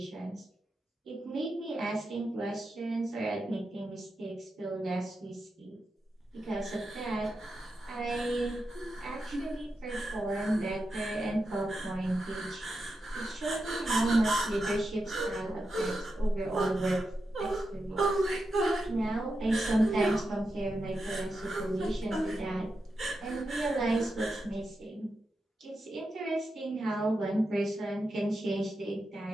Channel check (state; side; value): normal; both; correlation 0.88